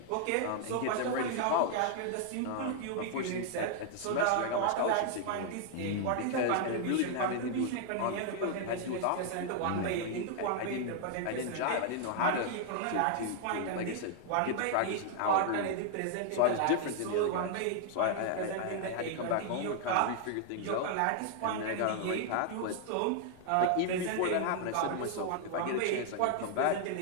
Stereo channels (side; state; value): both; different; correlation 0.00